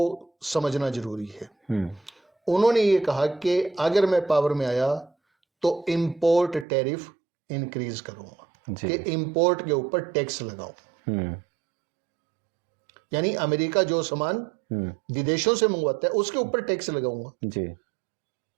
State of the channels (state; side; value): drops out; left; at 6.7 s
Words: समझना जरूरी है। उन्होंने ये कहा कि अगर मैं पावर में आया तो इंपोर्ट टैरिफ इंक्रीज करूंगा, कि इंपोर्ट के ऊपर टैक्स लगाऊं। यानी अमेरिका जो सामान विदेशों से मंगवाता है उसके ऊपर टैक्स लगाऊंगा जी।